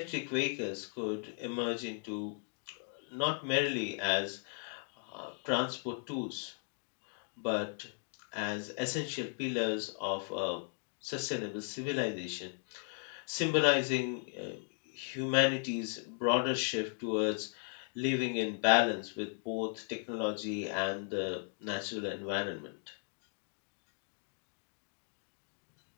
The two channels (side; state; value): right; silent; 53 dB below the other